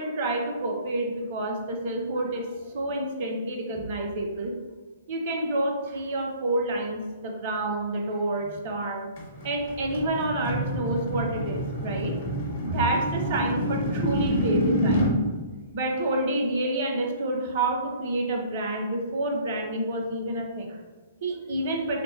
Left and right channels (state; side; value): inverted; both; correlation -0.50